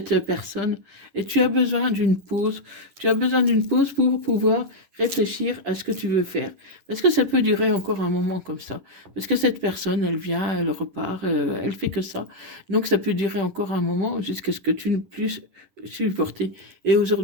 personne. Et tu as besoin d'une pause. Tu as besoin d'une pause pour pouvoir réfléchir à ce que tu veux faire. Parce que ça peut durer encore un moment comme ça. Parce que cette personne, elle vient, elle repart, elle fait que ça. Donc ça peut durer encore un moment jusqu'à ce que tu ne puisses supporter. Et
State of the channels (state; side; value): late; left; 11 ms